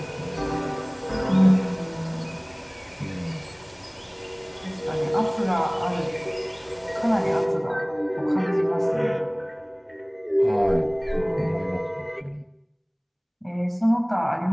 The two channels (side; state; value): both; identical; correlation 1.00